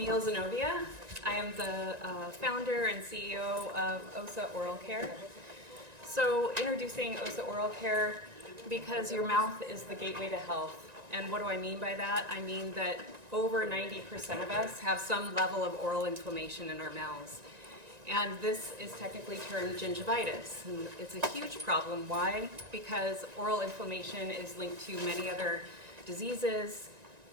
Zenobia. I am the founder and CEO of OSA Oral Care. So introducing OSA Oral Care because your mouth is the gateway to health. And what do I mean by that? I mean that over 90% of us have some level of oral inflammation in our mouths. And this is technically termed gingivitis. And it's a huge problem. Why? Because oral inflammation is linked to many other diseases,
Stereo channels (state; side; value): late; left; 1.9 ms